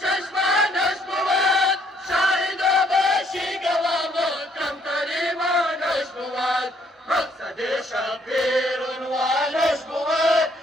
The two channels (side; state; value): both; normal; correlation 0.67